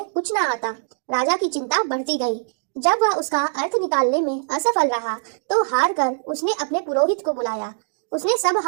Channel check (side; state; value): left; silent; digital silence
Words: कुछ ना आता। राजा की चिंता बढ़ती गई। जब वह उसका अर्थ निकालने में असफल रहा तो हार कर उसने अपने पुरोहित को बुलाया। उसने सब